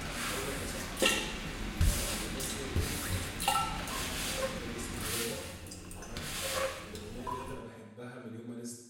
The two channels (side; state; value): both; identical; correlation 1.00